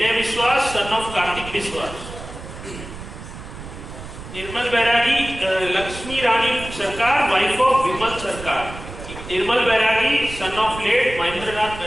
Biswas son of Kartik विश्वास, निर्मल बैरागी लक्ष्मी रानी सरकार वाइफ ऑफ विमल सरकार, निर्मल बैरागी सन ऑफ लेट महेंद्रनाथ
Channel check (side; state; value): right; noise; rumble, 12 dB below the sound